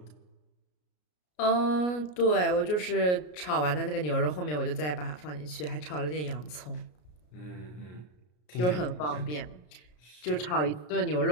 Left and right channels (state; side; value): late; right; 33 ms